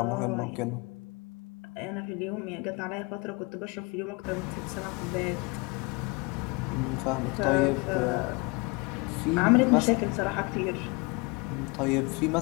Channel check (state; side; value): quieter; right; 28.6 dB